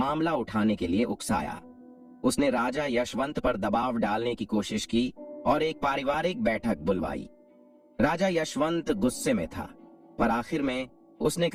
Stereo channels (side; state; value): both; identical; correlation 1.00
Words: उठाने के लिए उकसाया। उसने राजा यशवंत पर दबाव डालने की कोशिश की और एक पारिवारिक बैठक बुलवाई। राजा यशवंत गुस्से में था, पर आखिर में उसने